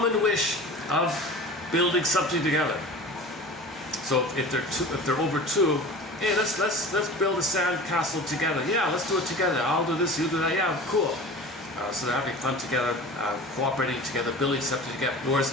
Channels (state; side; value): normal; both; correlation 0.37